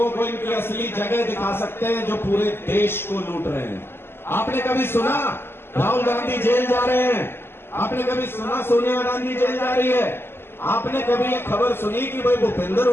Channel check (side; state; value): right; late; 0.11 ms